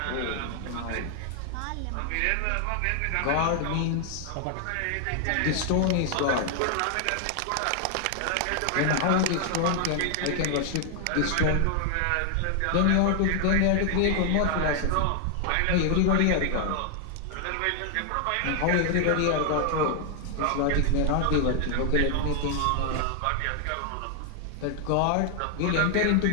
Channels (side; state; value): both; different; correlation 0.00